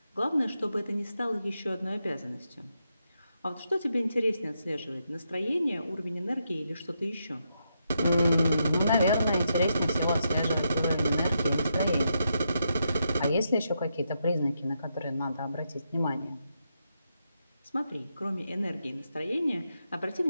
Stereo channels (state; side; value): inverted; both; correlation -0.82